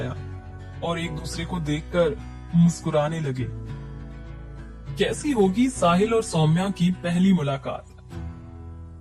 और एक दूसरे को देखकर मुस्कुराने लगे। कैसी होगी साहिल और सौम्या की पहली मुलाकात?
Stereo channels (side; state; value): both; identical; correlation 1.00